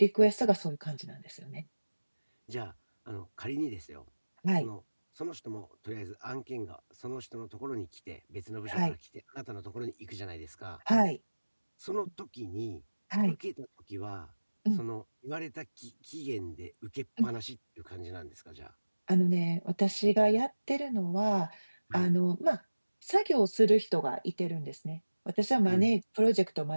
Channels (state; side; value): inverted; both; correlation -1.00